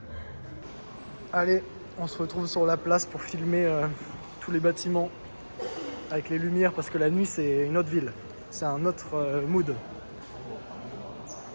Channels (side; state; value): both; inverted; correlation -1.00